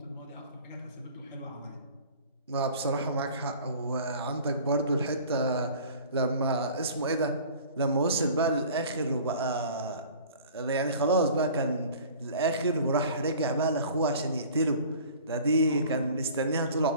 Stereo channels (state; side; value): inverted; both; correlation -0.45